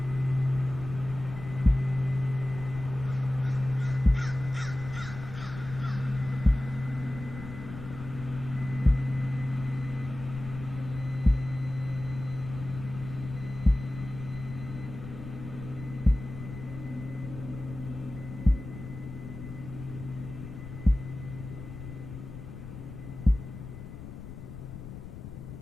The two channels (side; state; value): left; noise; rumble, 10 dB below the sound